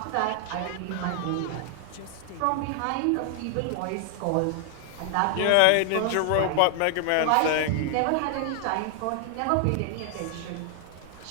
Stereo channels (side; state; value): both; different; correlation 0.00